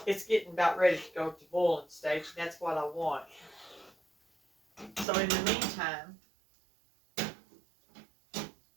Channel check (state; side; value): drops out; left; at 5.1 s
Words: It's getting about ready to go to boiling stage. That's what I want. So in the meantime,